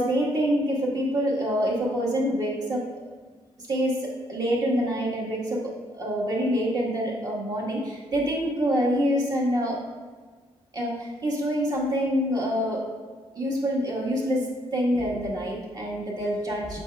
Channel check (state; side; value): normal; both; correlation 0.69